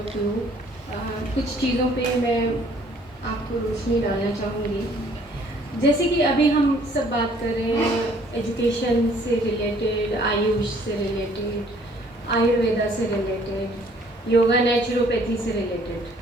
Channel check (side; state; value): both; normal; correlation 0.60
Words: you. कुछ चीज़ों पे मैं आपको रोशनी डालना चाहूँगी। जैसे कि अभी हम सब बात कर रहे हैं एजुकेशन से रिलेटेड, आयुष से रिलेटेड, आयुर्वेदा से रिलेटेड, योगा नेचुरोपैथी से